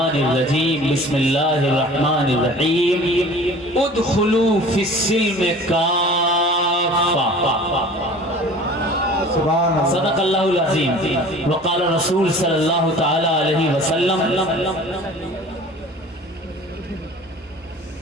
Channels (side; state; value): both; normal; correlation 0.44